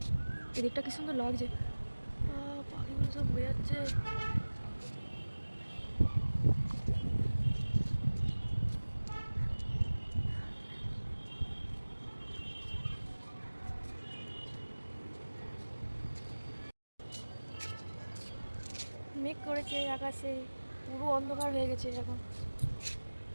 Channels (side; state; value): both; inverted; correlation -1.00